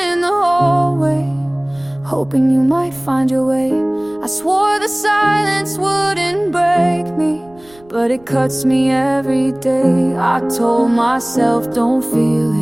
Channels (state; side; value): noise; right; rumble, 28 dB below the sound